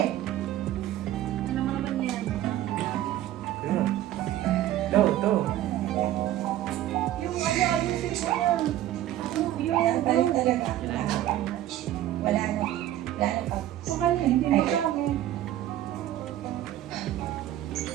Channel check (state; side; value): quieter; left; 13.3 dB